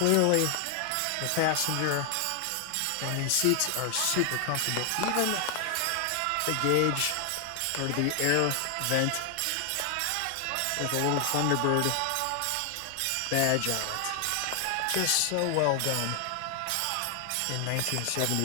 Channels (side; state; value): both; different; correlation 0.00